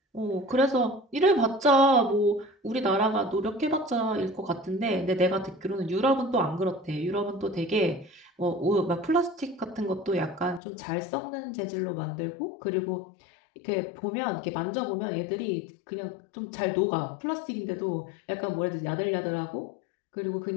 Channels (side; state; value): right; drops out; at 10.6 s